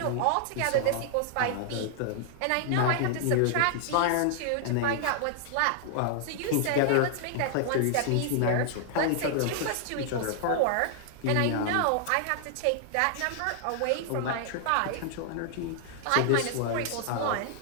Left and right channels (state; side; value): different; both; correlation 0.00